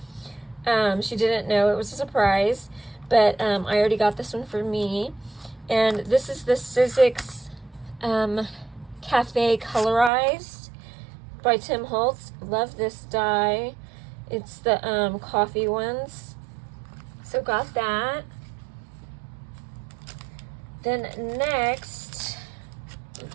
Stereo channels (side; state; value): left; drops out; at 10.1 s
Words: She didn't know, it was a surprise, but I already got this one for me. And this is the Sizzix Cafe Colorized by Tim Holtz. Love this die. It's the coffee ones. So got that. Then next,